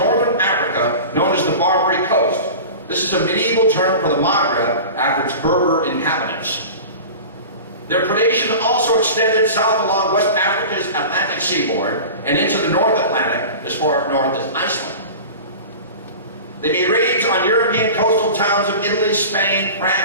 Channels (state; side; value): inverted; both; correlation -0.34